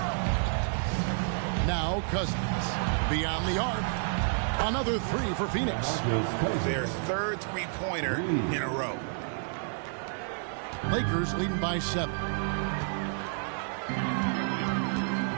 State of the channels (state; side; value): silent; left; 58 dB below the other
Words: Now Cousins beyond the arc. Another 3 for Phoenix. Their 3rd three-pointer in a row. Lakers leading by 7.